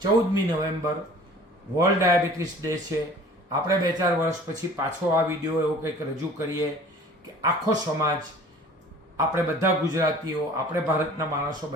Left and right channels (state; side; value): normal; both; correlation 0.47